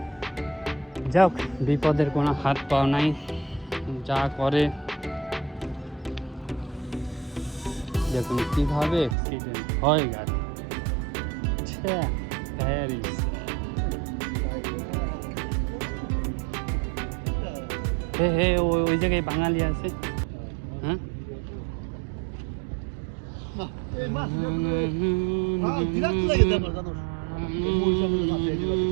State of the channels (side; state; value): left; drops out; at 9.2 s